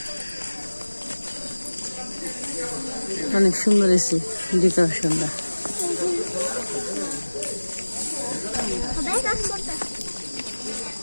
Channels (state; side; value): inverted; both; correlation -1.00